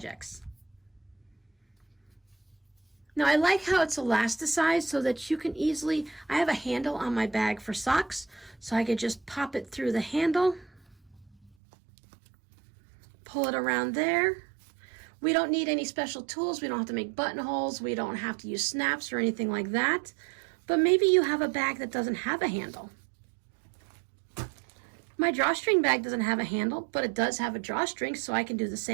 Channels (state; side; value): drops out; left; at 11.5 s